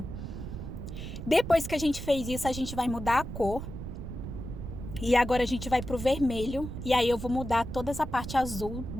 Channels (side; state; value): right; noise; rumble, 8 dB below the sound